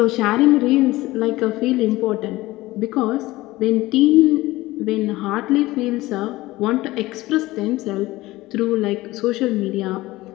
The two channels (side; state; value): right; quieter; 18.5 dB